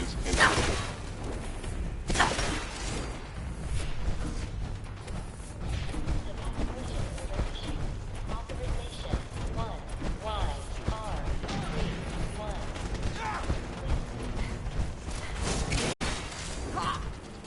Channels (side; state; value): both; identical; correlation 1.00